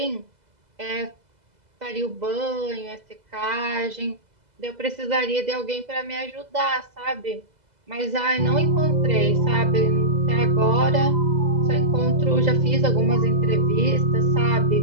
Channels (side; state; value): left; late; 2.0 ms